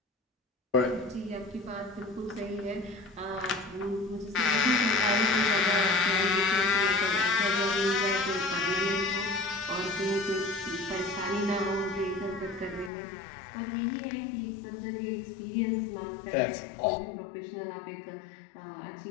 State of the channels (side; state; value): right; drops out; at 12.9 s